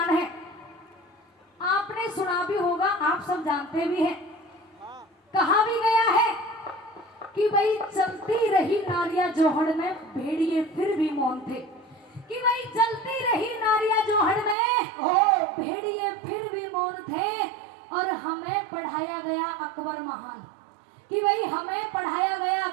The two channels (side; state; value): left; drops out; at 14.6 s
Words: है आपने सुना भी होगा, आप सब जानते भी हैं। कहा भी गया है कि भाई चलती रही नारियां जोहड़ में भेड़िए फिर भी मौन थे, कि भाई चलती रही नारियां जोहड़ में भेड़िए फिर भी मौन थे। और हमें पढ़ाया गया अकबर महान, कि भाई हमें पढ़ाया गया